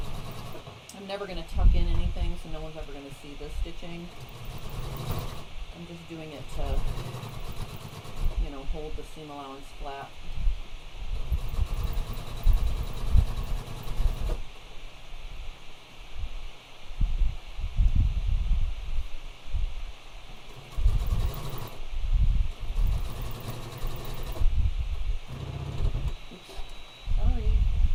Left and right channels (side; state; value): both; identical; correlation 1.00